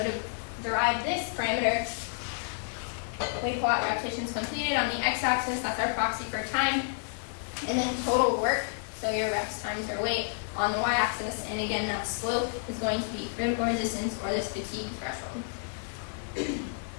to derive this parameter, we plot repetitions completed on the x-axis, that's our proxy for time, and then total work, so your reps times your weight on the y-axis, and again that slope is going to be critical resistance or this fatigue threshold.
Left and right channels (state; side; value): silent; right; digital silence